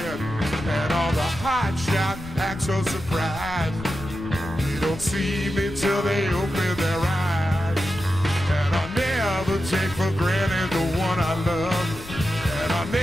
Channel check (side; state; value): left; noise; rumble, 14 dB below the sound